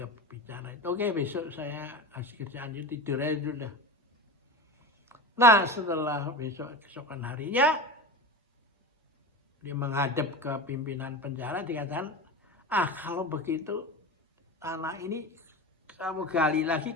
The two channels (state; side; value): normal; both; correlation 0.28